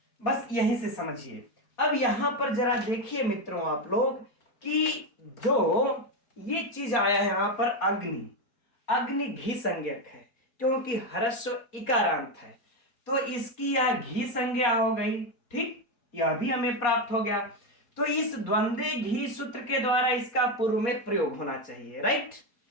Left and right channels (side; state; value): right; late; 4.2 ms